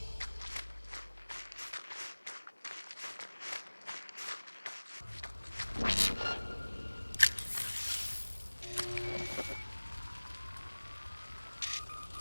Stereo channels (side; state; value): both; inverted; correlation -1.00